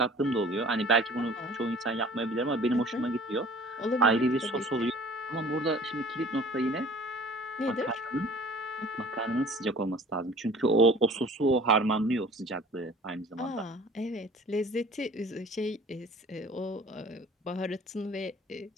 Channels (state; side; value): normal; both; correlation 0.48